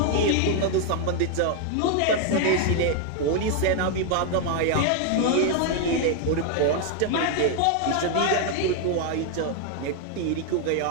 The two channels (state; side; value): different; both; correlation 0.00